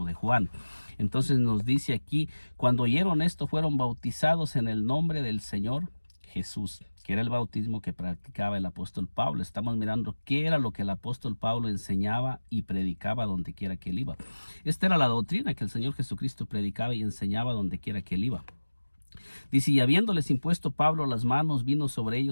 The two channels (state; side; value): inverted; both; correlation -1.00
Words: de Juan. Entonces nos dice aquí, cuando oyeron esto, fueron bautizados en el nombre del Señor Jesús. que era el bautismo que practicaba el apóstol Pablo. Estamos mirando qué era lo que el apóstol Pablo enseñaba y predicaba donde quiera que él iba. Esta era la doctrina que el Señor Jesucristo predicaba y enseñaba donde quiera que él iba. Dice, y habiéndoles impuesto Pablo las manos, vino sobre